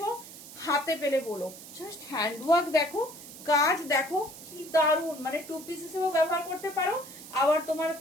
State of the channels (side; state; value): right; noise; hiss, 15 dB below the sound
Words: হাতে পেলে বলো। জাস্ট হ্যান্ডওয়ার্ক দেখো, কাজ দেখো কি দারুন। মানে 2 পিস হিসেবেও ব্যবহার করতে পারো, আবার তোমার